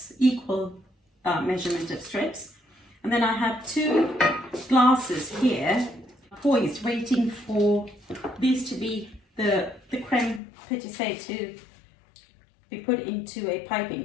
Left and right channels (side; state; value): right; drops out; at 10.4 s